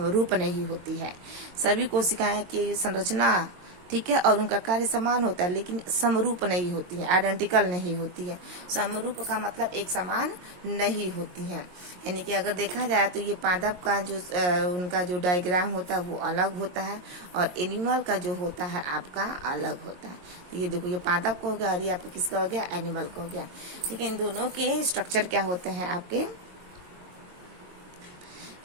नहीं होती है। सभी कोशिकाएं की संरचना ठीक है और उनका कार्य समान होता है, लेकिन समरूप नहीं होती है, आइडेंटिकल नहीं होती है। समरूप का मतलब एक समान नहीं होती है। यानी कि अगर देखा जाए तो ये पादप का जो उनका जो डायग्राम होता है वो अलग होता है और एनिमल का जो होता है आपका अलग होता है। तो ये देखो ये पादप को हो गया और ये आपका किसका हो गया, एनिमल का हो गया। ठीक है, इन दोनों के स्ट्रक्चर क्या होते हैं आपके,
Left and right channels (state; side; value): late; left; 22 ms